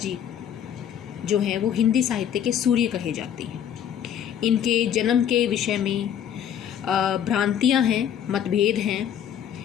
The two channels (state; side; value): quieter; right; 9.4 dB